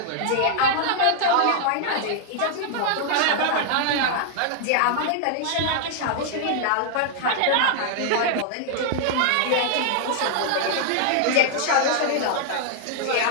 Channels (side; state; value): both; different; correlation -0.01